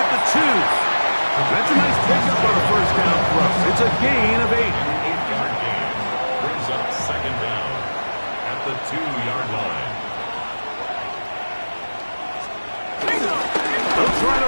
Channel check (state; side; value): inverted; both; correlation -1.00